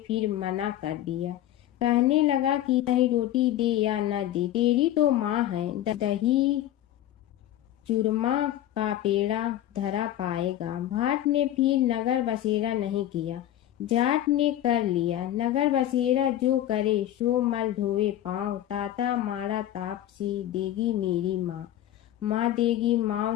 मना कर दिया। कहने लगा कि चाहे रोटी दे या न दे, तेरी तो माँ है, दही चूरमा का पेड़ा धरा पाएगा। भाट ने फिर नगर बसेरा नहीं किया, जाट ने कर लिया। नगर बसेरा जो करे सो मल धोए पाँव, ताता माड़ा तापसी देगी मेरी माँ, माँ देगी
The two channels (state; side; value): quieter; right; 12.8 dB